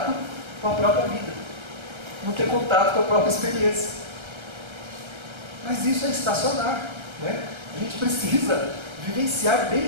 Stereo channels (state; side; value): late; left; 1.3 ms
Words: com a própria vida, não ter contato com a própria experiência. Mas isso é estacionar, né? A gente precisa vivenciar